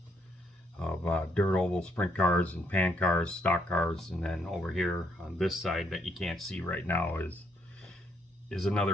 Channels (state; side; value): normal; both; correlation 0.73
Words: of dirt oval sprint cars and pan cars, stock cars, and then over here on this side that you can't see right now is